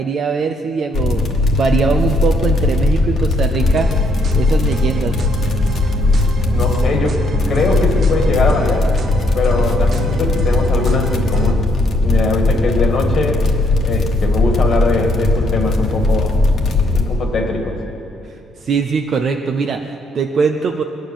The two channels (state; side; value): normal; both; correlation 0.70